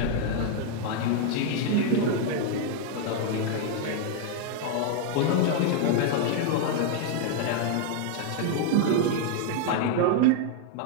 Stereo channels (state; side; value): different; both; correlation 0.00